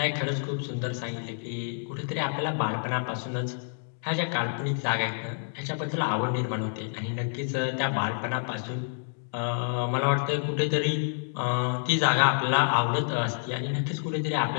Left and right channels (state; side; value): silent; right; digital silence